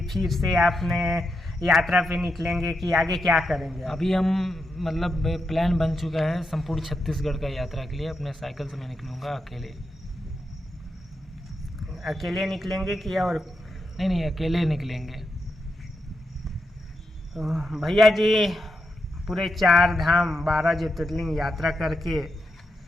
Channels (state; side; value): normal; both; correlation 0.85